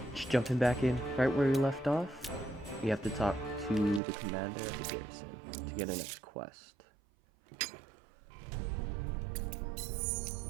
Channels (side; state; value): left; drops out; at 4.0 s